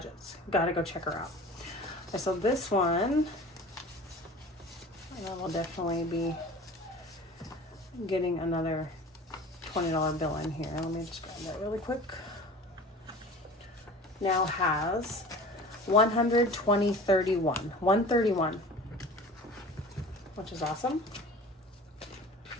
Gotta go check her out. Okay, so this one, I will definitely be getting another $20 bill in here. Let me just grab that really quick. Now has 131, which is awesome.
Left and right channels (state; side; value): normal; both; correlation 0.41